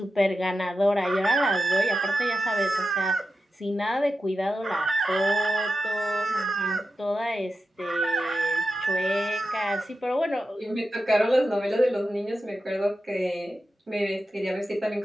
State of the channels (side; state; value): both; normal; correlation 0.91